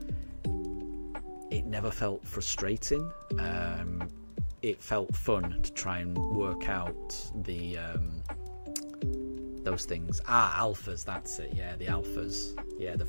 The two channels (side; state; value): both; inverted; correlation -1.00